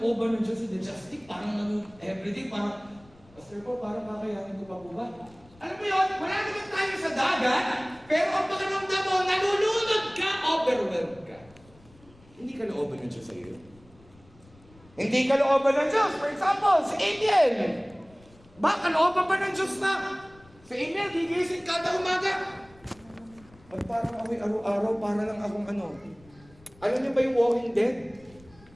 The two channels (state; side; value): noise; left; rumble, 26 dB below the sound